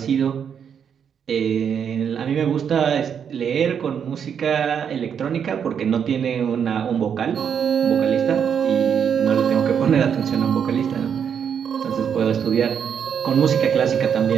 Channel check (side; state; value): left; quieter; 7.7 dB